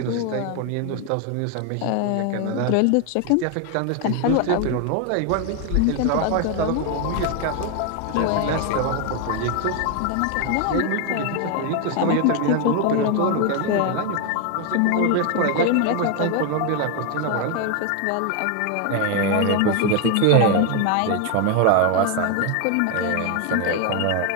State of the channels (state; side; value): different; both; correlation 0.01